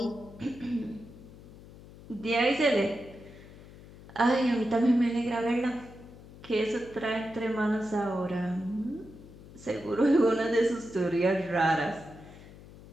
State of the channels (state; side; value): noise; left; hum, 19 dB below the sound